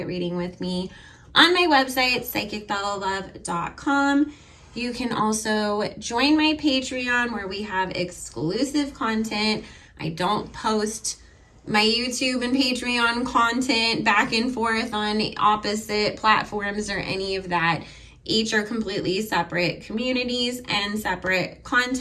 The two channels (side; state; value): both; identical; correlation 1.00